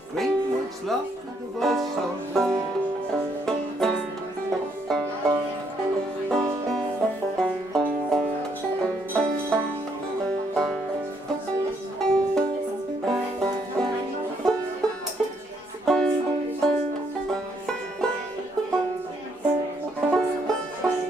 greenwood's laugh with the voice of wind.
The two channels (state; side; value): normal; both; correlation 0.72